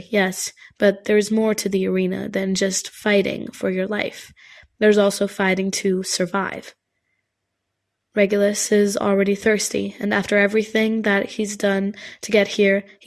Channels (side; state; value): both; identical; correlation 1.00